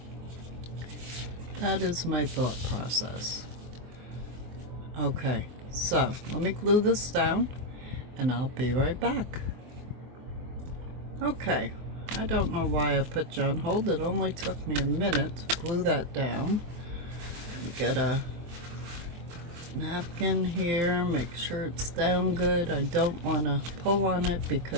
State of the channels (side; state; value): left; late; 24 ms